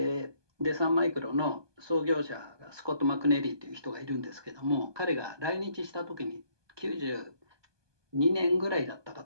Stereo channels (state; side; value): late; left; 1.2 ms